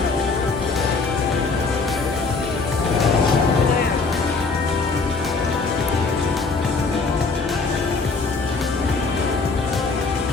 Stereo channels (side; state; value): right; quieter; 4.2 dB